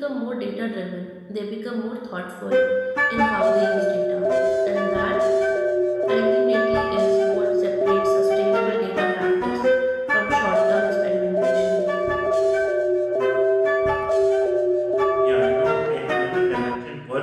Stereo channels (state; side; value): identical; both; correlation 1.00